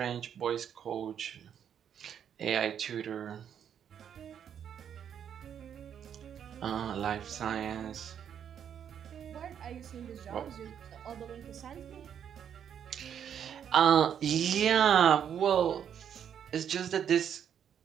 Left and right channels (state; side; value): quieter; left; 8.7 dB